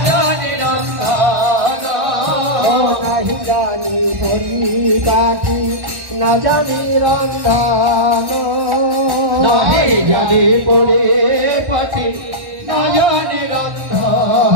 জানি রন্ধন নাহি জানি পরিপাটি না জানি রন্ধন নাহি জানি পরিপাটি না জানি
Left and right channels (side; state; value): left; late; 1.1 ms